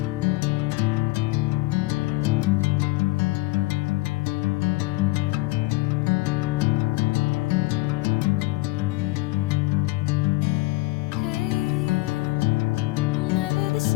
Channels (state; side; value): quieter; right; 21.1 dB